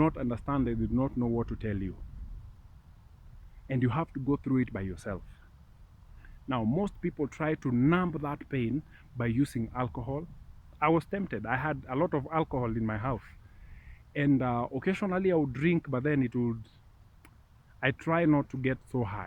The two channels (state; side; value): identical; both; correlation 1.00